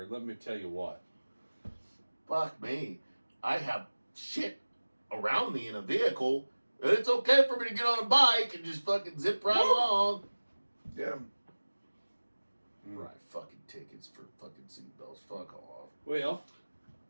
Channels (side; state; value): both; inverted; correlation -1.00